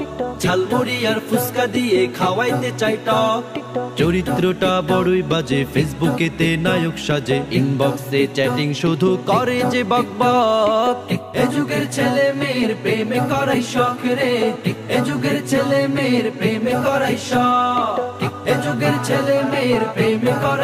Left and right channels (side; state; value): both; identical; correlation 1.00